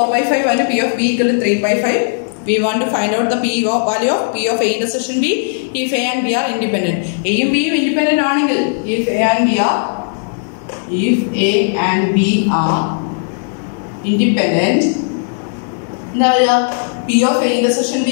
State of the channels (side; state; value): right; silent; digital silence